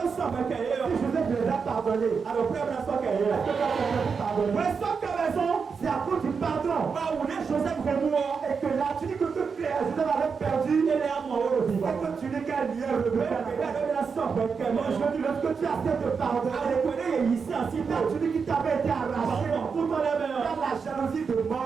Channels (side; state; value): left; quieter; 5.6 dB